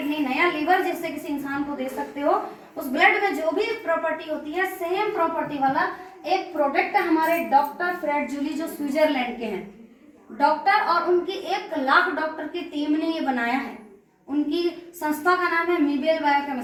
नया लीवर जिससे किसी इंसान को दे सकते हो। उस ब्लड में जो भी प्रॉपर्टी होती है, सेम प्रॉपर्टी वाला एक प्रोडक्ट हमारे डॉक्टर फ्रेड जूली जो स्विट्जरलैंड के हैं डॉक्टर, और उनकी 1 लाख डॉक्टर की टीम ने ये बनाया है। उनकी संस्था का नाम है मीबेल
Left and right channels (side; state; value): both; identical; correlation 1.00